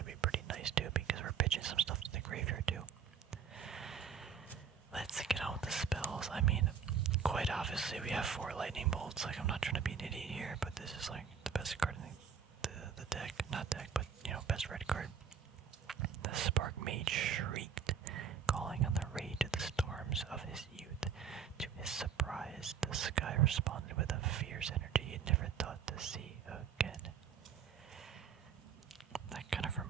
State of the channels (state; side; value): quieter; left; 7.1 dB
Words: be pretty nice too, because we're pitching some stuff to the graveyard too. Let's get on with the spells. I mean, quite obviously we have 4 lightning bolts. Like, I'm not trying to be an idiot here, but this is like the best card in the deck. Not deck, but best red card. The Spark Mage shrieked, calling on the rage of the storms of his youth. To his surprise, the sky responded with a fierce energy he'd never thought to see again. That kind of